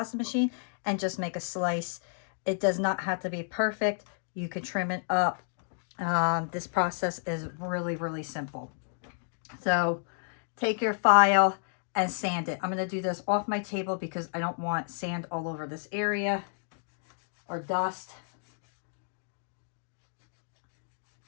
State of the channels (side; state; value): right; silent; digital silence